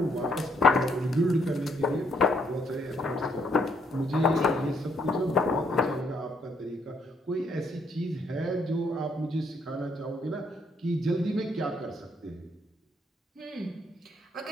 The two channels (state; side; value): normal; both; correlation 0.71